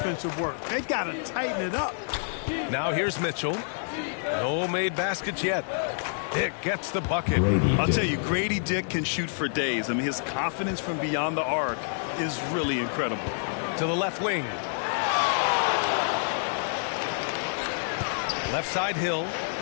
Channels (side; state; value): right; silent; digital silence